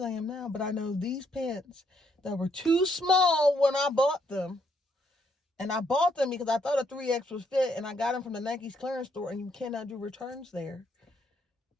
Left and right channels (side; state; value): both; normal; correlation 0.73